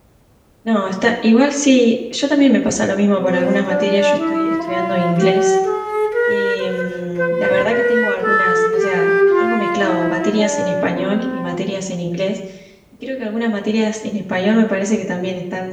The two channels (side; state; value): both; identical; correlation 1.00